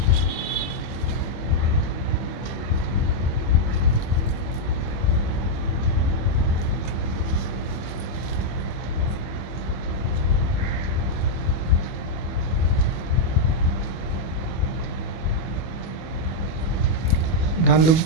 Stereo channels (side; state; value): right; late; 25 ms